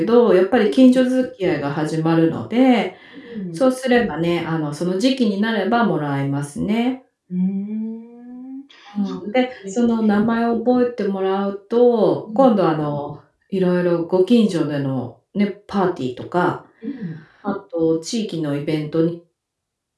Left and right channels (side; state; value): both; identical; correlation 1.00